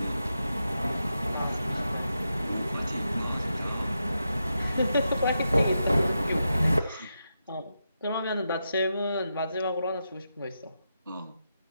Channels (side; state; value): both; inverted; correlation -0.87